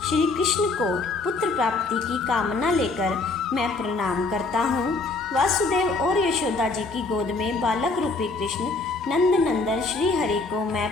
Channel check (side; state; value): right; quieter; 3.6 dB